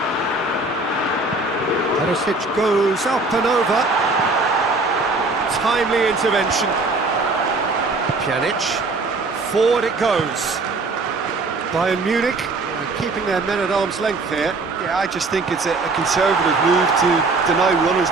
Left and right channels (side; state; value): left; quieter; 3.4 dB